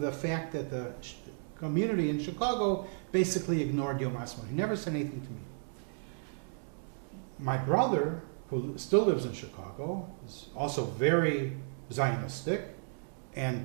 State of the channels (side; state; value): left; silent; digital silence